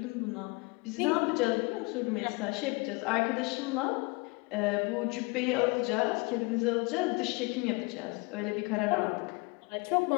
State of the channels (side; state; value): right; quieter; 27.7 dB